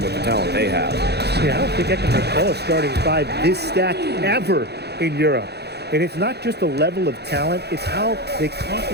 with the talent they have. Yeah, I don't think I can recall a starting five this stacked ever in Europe. And it's not just the level of talent, it's how they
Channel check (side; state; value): left; late; 0.48 ms